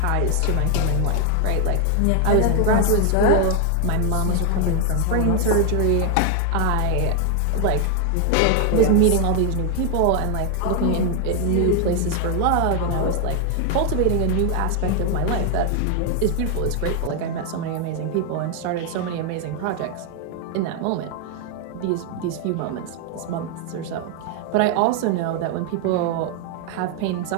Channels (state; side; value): different; both; correlation 0.00